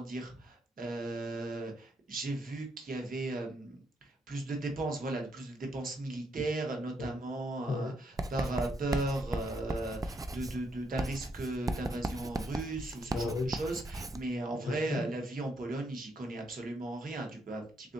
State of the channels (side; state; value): both; normal; correlation 0.76